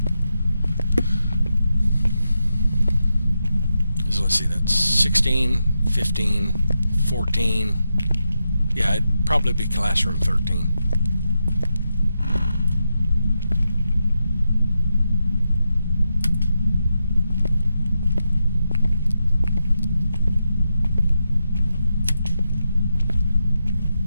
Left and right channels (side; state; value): both; inverted; correlation -0.87